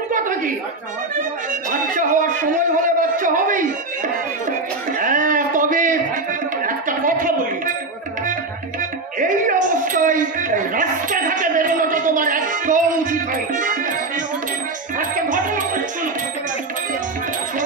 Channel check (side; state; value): left; quieter; 3.3 dB